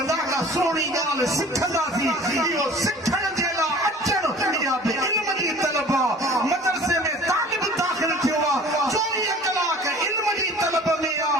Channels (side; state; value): both; normal; correlation 0.46